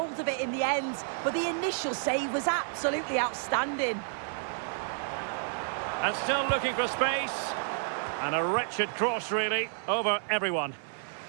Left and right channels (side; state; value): left; silent; digital silence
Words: of it in the end, but the initial save was absolutely outstanding. And still looking for space. And a wretched cross, really, over everyone.